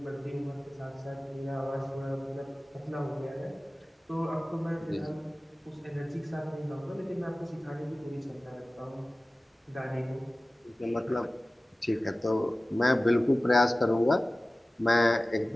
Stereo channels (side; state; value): both; normal; correlation 0.97